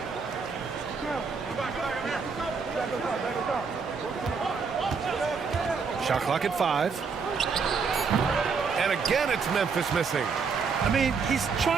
Shot clock at 5. And again, it's Memphis missing. I mean, he's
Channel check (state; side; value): quieter; left; 5.3 dB